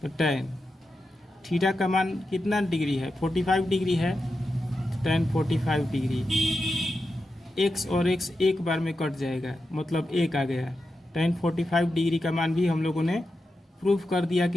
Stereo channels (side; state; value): both; normal; correlation 0.89